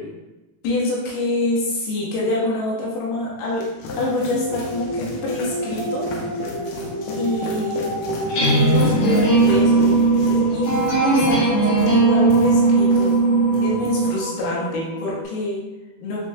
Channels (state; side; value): late; right; 18 ms